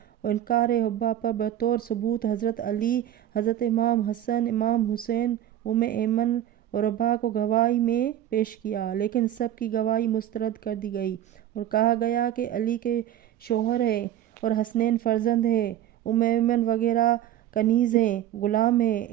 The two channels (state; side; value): quieter; left; 11.7 dB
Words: اور انکار حبہ پر بطور ثبوت حضرت علی، حضرت امام حسن، امام حسین، ایمن اور رباح کو گواہی میں پیش کیا، لیکن سب کی گواہی مسترد کر دی گئی اور کہا گیا کہ علی کے شوہر ہیں اور حسنین فرزند ہیں، ایمن وغیرہ کنیز ہیں، غلام ہیں،